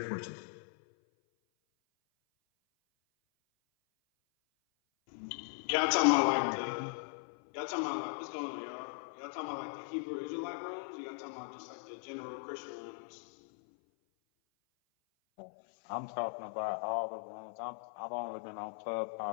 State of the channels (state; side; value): silent; right; 52 dB below the other